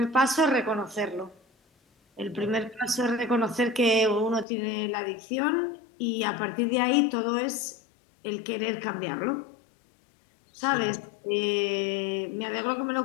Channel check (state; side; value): drops out; right; at 4.5 s